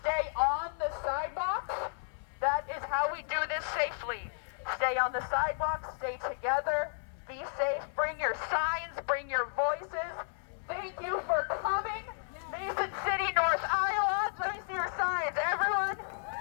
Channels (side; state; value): right; silent; 56 dB below the other